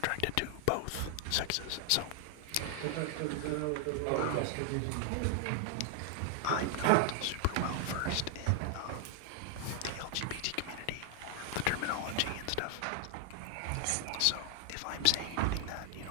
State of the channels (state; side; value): different; both; correlation 0.00